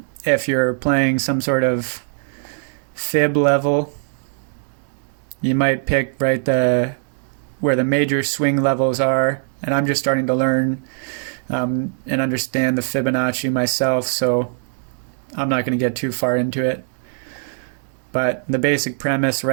if you're playing some sort of fib level, you might pick right where the major swing levels are. And I'm just starting to learn and understand the Fibonacci myself, so I'm not going to get too far into it. But the basic premise,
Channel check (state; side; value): silent; left; digital silence